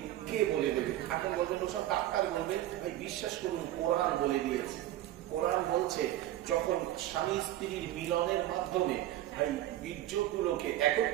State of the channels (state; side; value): quieter; left; 13.9 dB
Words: কে বলে দেবে? এখন বলবেন ওসব ডাক্তার বলবে। ভাই, বিশ্বাস করুন, কোরআন বলে দিয়েছে। কোরআন বলছে, যখন স্বামী স্ত্রীর মিলনের মাধ্যমে ভাই বীর্যগুলোকে